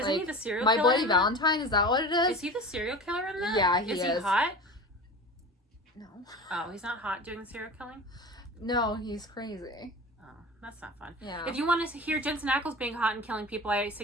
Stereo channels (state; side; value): normal; both; correlation 0.33